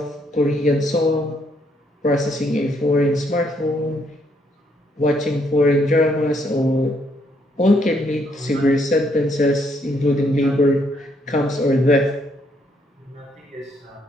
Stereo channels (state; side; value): normal; both; correlation 0.72